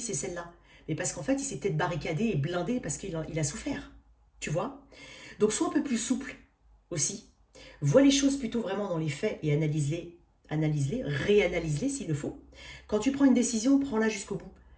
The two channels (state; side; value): identical; both; correlation 1.00